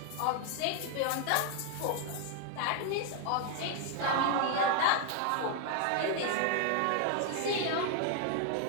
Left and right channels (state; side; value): different; both; correlation 0.00